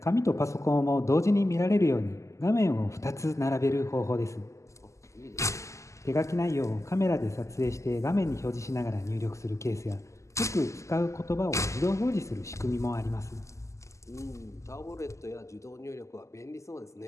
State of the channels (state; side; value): late; right; 0.15 ms